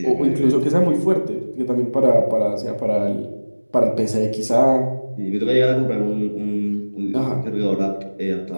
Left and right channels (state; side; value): inverted; both; correlation -1.00